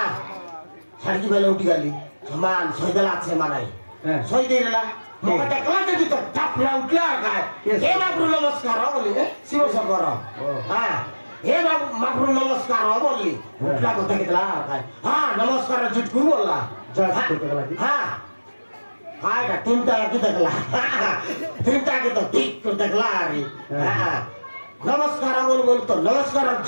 सरिकी बेले उटिकाली समान सैदला छे मानाई सैदेला मका टकला जति त टापला उठला काय हे बाबू नमस्कार हो बोली शिव शंकर हां हे बाबू माफरू नमस्कार हो बोली उठला तो तकितला काय हां नमस्कार जुटकू बोलला हां हाय का तीनटा की तकला तीनटा की तो ठीक तो तकला रे हां नमस्कार बोल तो नमस्कार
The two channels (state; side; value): inverted; both; correlation -1.00